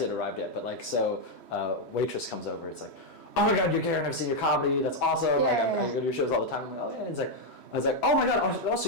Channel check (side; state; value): right; late; 3.1 ms